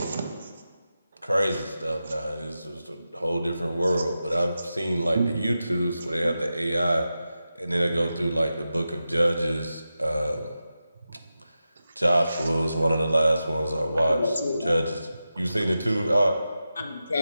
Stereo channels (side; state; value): both; inverted; correlation -0.91